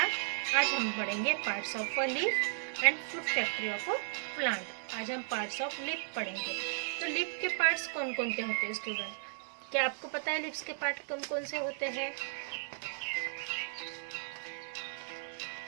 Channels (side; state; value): left; silent; 54 dB below the other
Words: आज हम पढ़ेंगे parts of a leaf and food factory of a plant. आज हम पार्ट्स ऑफ लीफ पढ़ेंगे. तो लीफ के पार्ट्स कौन कौन से होते हैं स्टूडेंट? क्या आपको पता है लीव्स के पार्ट कौन कौन से होते हैं?